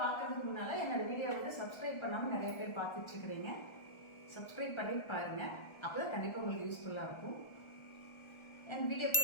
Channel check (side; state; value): right; late; 1.4 ms